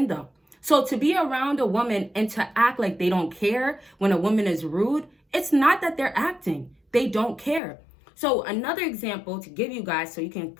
them. So to be around a woman and to act like they don't care when a woman is rude, it's not that they're acting. They don't care. So another example to give you guys so you can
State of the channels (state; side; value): drops out; right; at 7.6 s